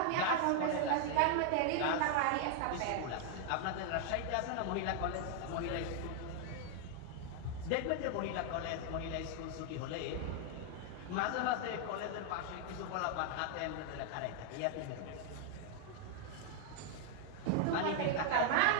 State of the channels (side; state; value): both; different; correlation 0.00